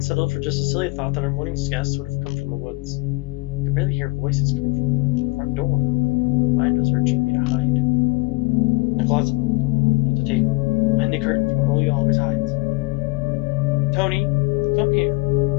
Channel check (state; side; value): quieter; right; 25.6 dB